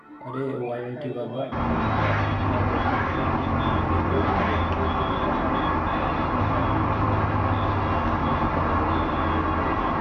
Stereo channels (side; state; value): both; identical; correlation 1.00